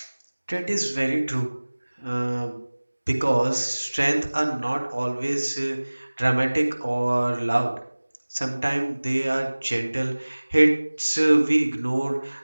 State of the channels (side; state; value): both; inverted; correlation -1.00